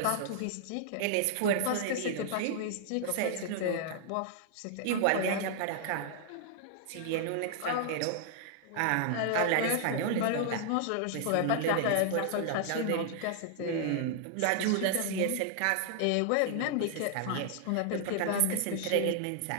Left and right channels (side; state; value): both; different; correlation -0.01